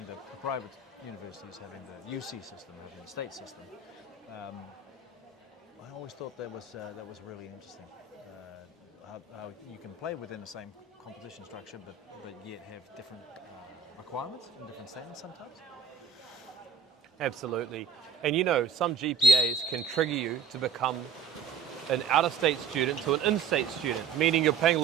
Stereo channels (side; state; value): left; quieter; 6.2 dB